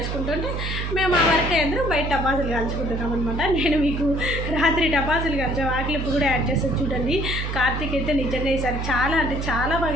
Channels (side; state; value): right; noise; hum, 3 dB below the sound